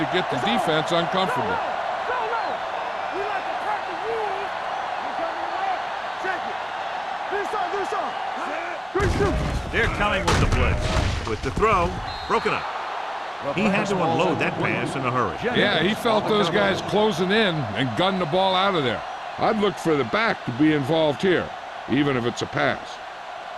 get the defense uncomfortable. They're coming with the blitz. With the throw, broken up. He had to unload that pass in a hurry. Yeah, he felt those guys closing in and gunned the ball out of there. I'd look for the back to be involved here, even if it's a pass.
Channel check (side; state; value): both; identical; correlation 1.00